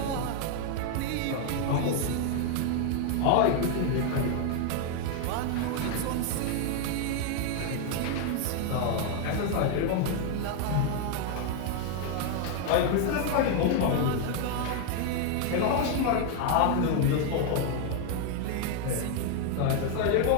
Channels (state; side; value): different; both; correlation 0.00